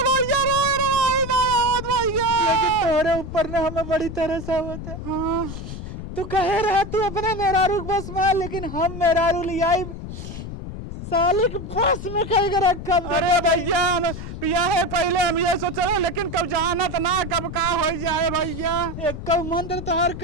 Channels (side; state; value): left; noise; rumble, 9 dB below the sound